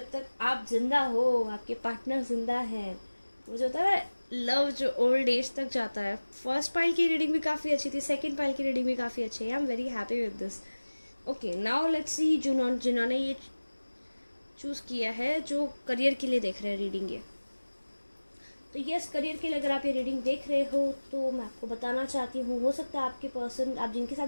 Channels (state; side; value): inverted; both; correlation -1.00